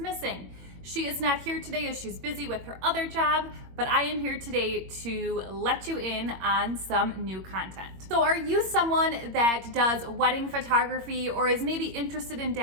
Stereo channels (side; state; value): left; late; 21 ms